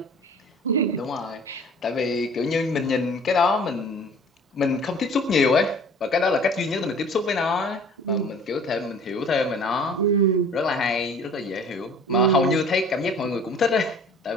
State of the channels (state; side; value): normal; both; correlation 0.48